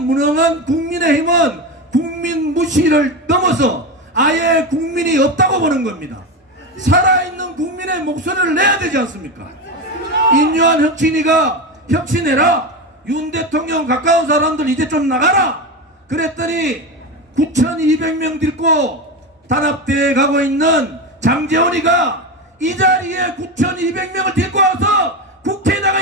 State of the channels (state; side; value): normal; both; correlation 0.18